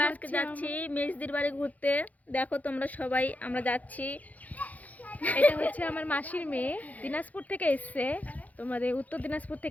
আজকে যাচ্ছি মেজদির বাড়ি ঘুরতে। দেখো তোমরা সবাই, আমরা যাচ্ছি। এটা হচ্ছে আমার মাসির মেয়ে, দিনাজপুর থেকে এসছে, তোমাদের উত্তর দিনাজপুর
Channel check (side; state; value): right; late; 0.076 ms